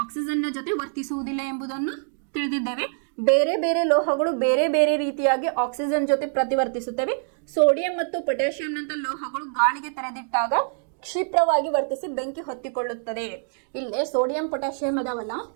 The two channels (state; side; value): silent; left; digital silence